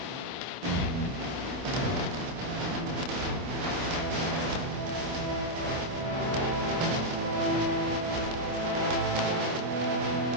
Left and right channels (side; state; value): left; late; 26 ms